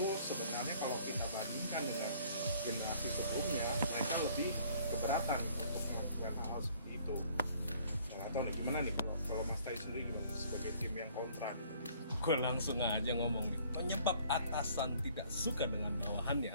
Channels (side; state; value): both; inverted; correlation -0.57